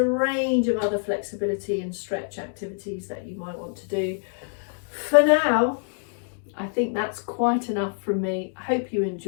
range of other flexibility and stretch activities that you might want to do. For now, I think that's quite enough from me. I hope you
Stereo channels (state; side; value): silent; right; 61 dB below the other